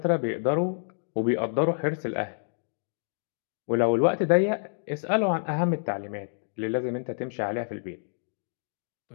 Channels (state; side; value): silent; right; digital silence